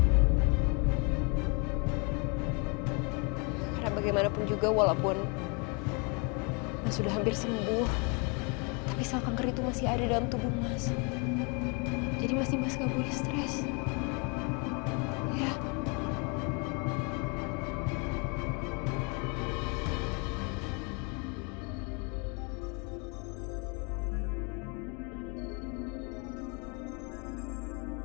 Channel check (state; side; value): quieter; right; 33.6 dB